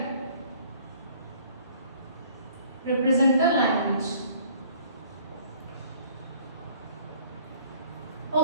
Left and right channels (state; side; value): inverted; both; correlation -0.55